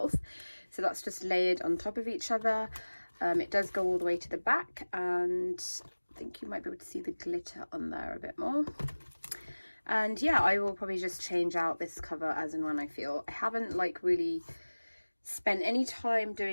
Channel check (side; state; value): both; inverted; correlation -1.00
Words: So that's just layered on top of each other. It does go all the way to the back, and I think you might be able to see the glitter on there a bit more. And yeah, I will probably just change out this cover as and when I feel. I haven't like really spent any time